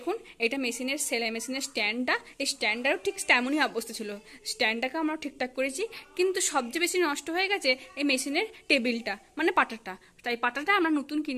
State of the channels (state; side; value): identical; both; correlation 1.00